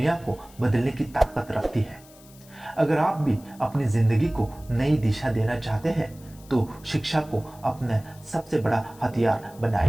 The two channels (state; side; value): noise; left; hiss, 24 dB below the sound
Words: को बदलने की ताकत रखती है। अगर आप भी अपनी जिंदगी को नई दिशा देना चाहते हैं तो शिक्षा को अपना सबसे बड़ा हथियार